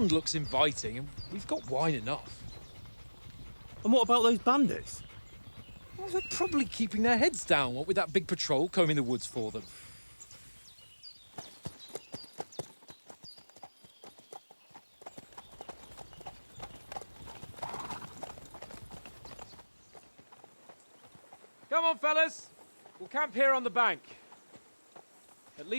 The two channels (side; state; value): both; inverted; correlation -1.00